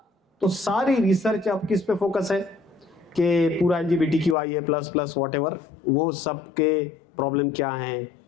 तो सारी रिसर्च अब किस पे फोकस है कि पूरा LGBTQIA प्लस वॉट एवर, वो सब के प्रॉब्लम क्या हैं,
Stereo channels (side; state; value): right; drops out; at 4.4 s